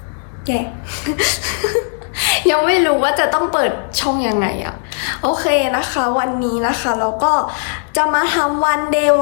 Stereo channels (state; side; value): silent; right; digital silence